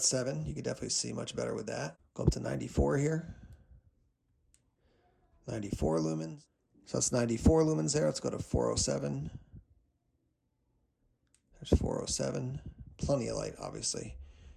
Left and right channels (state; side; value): identical; both; correlation 1.00